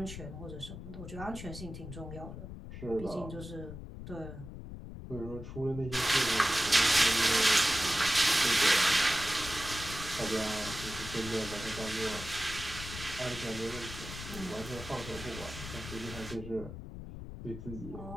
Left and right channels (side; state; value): left; noise; rumble, 10 dB below the sound